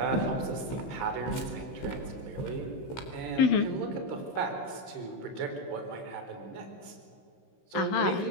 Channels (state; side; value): late; right; 16 ms